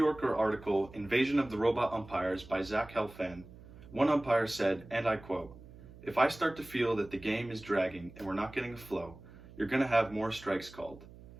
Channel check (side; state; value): right; noise; hum, 19 dB below the sound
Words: article, Invasion of the Robot Umpires by Zach Helfand, one umpire said, and I quote, "If I start to feel that the game is dragging and we're not getting a flow, you're going to have more strikes called.